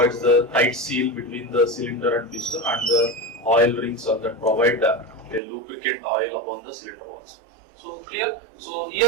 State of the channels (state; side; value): drops out; left; at 5.4 s